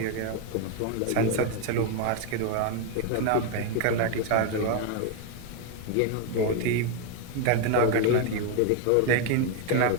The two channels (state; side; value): different; both; correlation 0.01